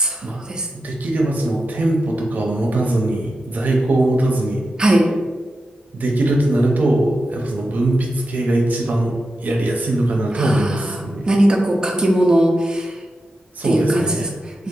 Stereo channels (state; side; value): normal; both; correlation 0.89